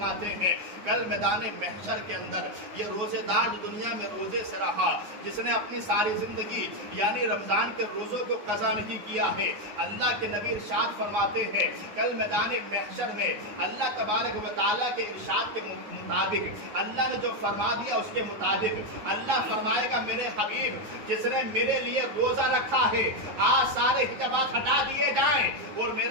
ہیں کل میدان محشر کے اندر یہ روزے دار جو دنیا میں روزے سے رہا، جس نے اپنی ساری زندگی یعنی رمضان کے روزوں کو قضا نہیں کیا ہے، اللہ کے نبی ارشاد فرماتے ہیں کل میدان محشر میں اللہ تبارک و تعالیٰ کے ارشاد کے مطابق اللہ نے جو فرما دیا اس کے مطابق اللہ فرمائے گا میرے حبیب جس نے میرے لیے روزہ رکھا ہے آج سارے حجابات ہٹا دیے جائیں اور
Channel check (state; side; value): late; left; 9.6 ms